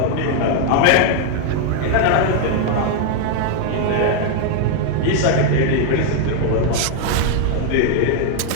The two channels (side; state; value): both; different; correlation 0.00